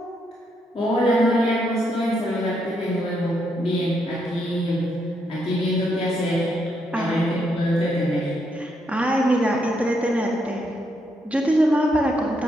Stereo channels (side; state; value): both; normal; correlation 0.77